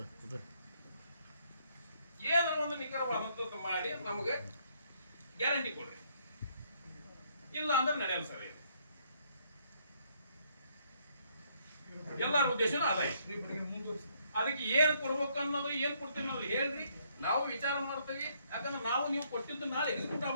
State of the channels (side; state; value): both; inverted; correlation -0.69